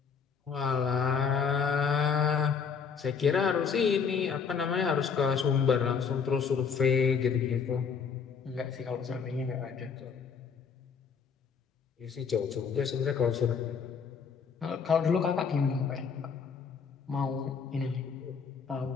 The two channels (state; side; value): quieter; right; 6.2 dB